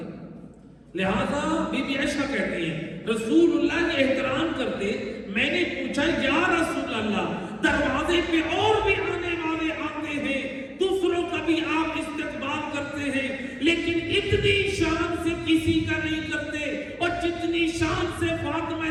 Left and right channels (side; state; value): both; identical; correlation 1.00